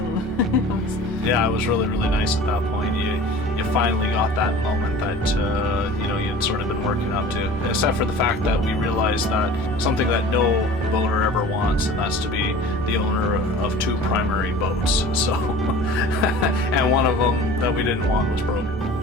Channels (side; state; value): both; normal; correlation 0.41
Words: yeah, it was really, really nice at that point. You finally got that moment that you know, you'd sort of been working up to, except for the fact that we realized that something that no boater ever wants, and that's to be the owner of two primary boats. So and one of them that we didn't want was broken.